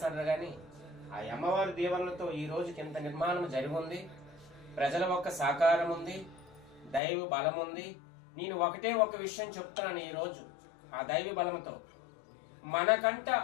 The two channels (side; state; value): right; drops out; at 7.0 s